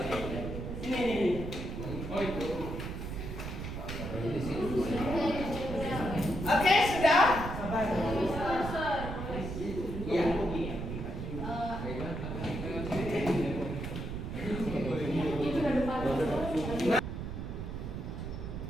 Ini. Oh itu. Oke, sudah? Iya.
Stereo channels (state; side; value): noise; right; rumble, 6 dB below the sound